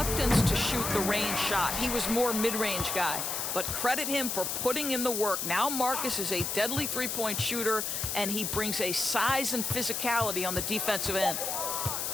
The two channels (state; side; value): noise; left; hiss, 2 dB below the sound